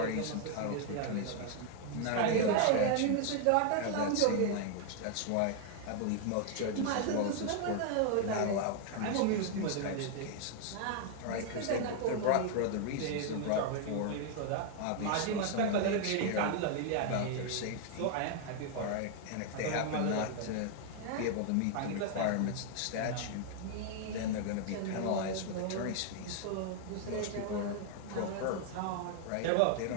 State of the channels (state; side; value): different; both; correlation 0.00